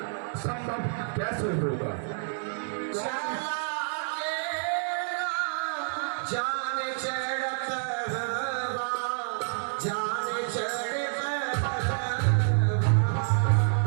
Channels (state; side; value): silent; left; digital silence